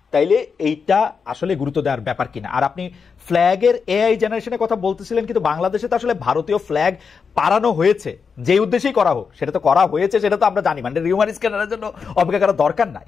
তাইলে এইটা আসলে গুরুত্ব দেওয়ার ব্যাপার কিনা। আর আপনি ফ্ল্যাগের এআই জেনারেশনের কথা বলতেছিলেন, কিন্তু বাংলাদেশে তো আসলে ভারতীয় ফ্ল্যাগ পাড়ানো হয়েছে, যে উদ্দেশ্যেই করা হোক সেটা তো করা হয়েছে, সেটা তো আমরা জানি, মানে রিউমার স্ক্যানারের জন্য অপেক্ষা করার দরকার নাই।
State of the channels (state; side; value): quieter; right; 5.7 dB